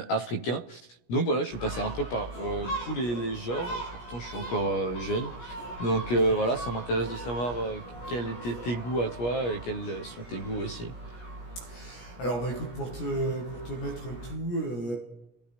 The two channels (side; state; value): right; late; 17 ms